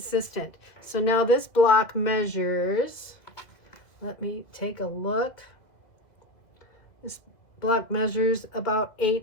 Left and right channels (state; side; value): late; right; 2.2 ms